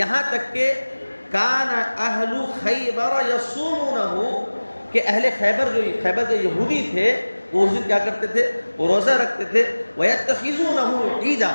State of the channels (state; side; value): inverted; both; correlation -1.00